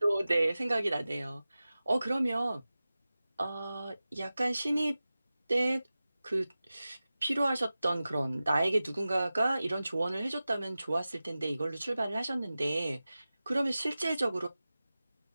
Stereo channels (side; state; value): both; inverted; correlation -0.95